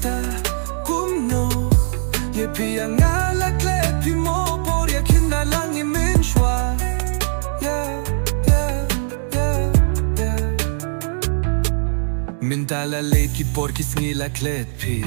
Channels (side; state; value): left; silent; digital silence